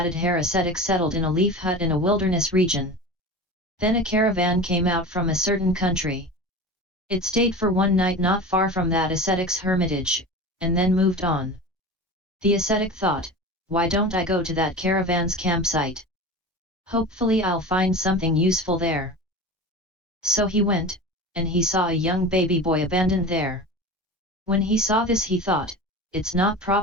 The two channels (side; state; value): both; normal; correlation 0.32